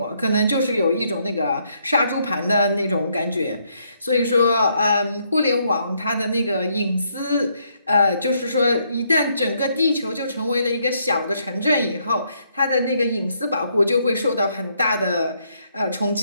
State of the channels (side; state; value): both; inverted; correlation -0.73